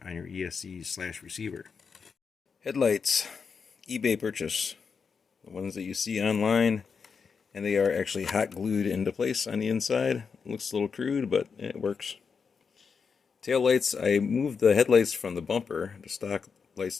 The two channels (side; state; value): right; quieter; 5.7 dB